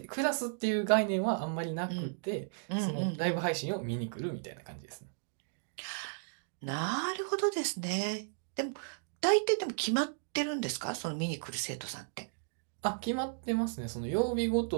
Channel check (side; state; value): left; silent; digital silence